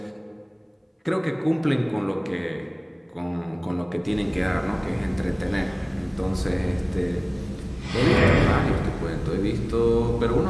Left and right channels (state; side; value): identical; both; correlation 1.00